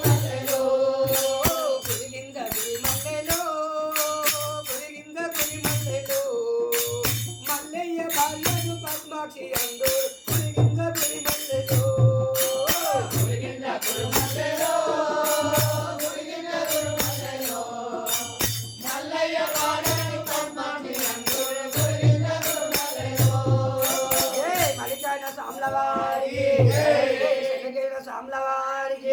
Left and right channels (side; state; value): both; identical; correlation 1.00